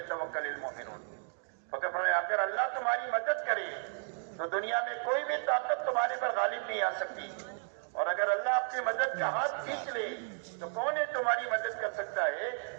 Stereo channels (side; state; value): left; silent; 55 dB below the other